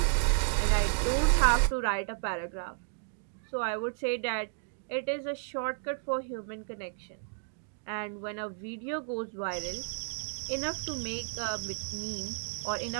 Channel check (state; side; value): silent; left; digital silence